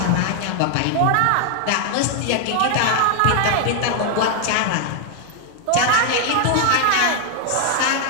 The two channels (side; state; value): both; different; correlation 0.00